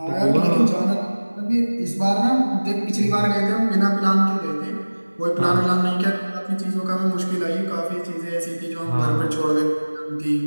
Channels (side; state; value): both; inverted; correlation -1.00